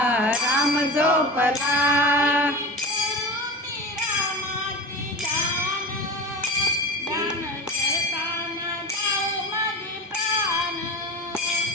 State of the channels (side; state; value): both; normal; correlation 0.30